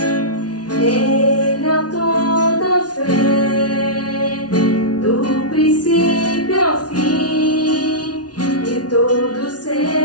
Ele é toda fé, do princípio ao fim, e todos os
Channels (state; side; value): late; right; 0.69 ms